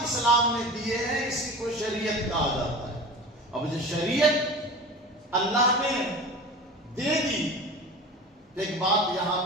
اسلام نے دیے ہیں اسی کو شریعت کہا جاتا ہے۔ اب جو شریعت اللہ نے دے دی، ایک بات یہاں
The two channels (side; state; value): both; normal; correlation 0.34